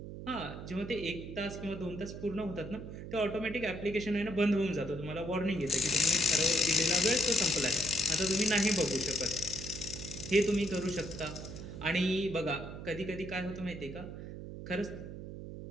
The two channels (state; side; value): noise; right; hum, 10 dB below the sound